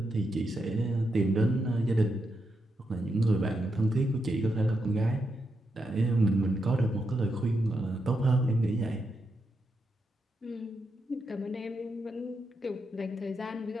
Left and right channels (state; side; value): normal; both; correlation 0.84